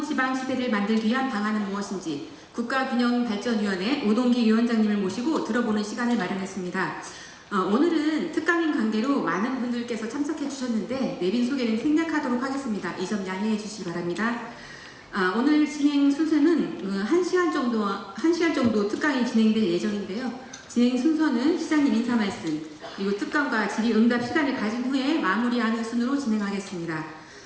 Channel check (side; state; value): both; identical; correlation 1.00